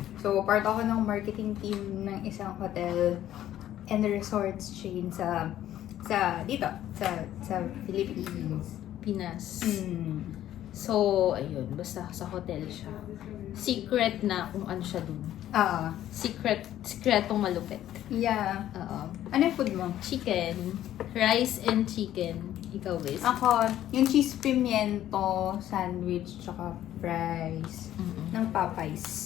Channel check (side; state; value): right; quieter; 12.3 dB